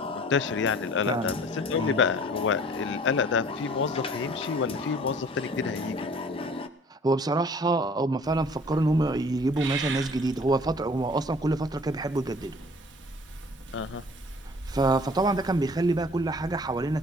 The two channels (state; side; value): normal; both; correlation 0.50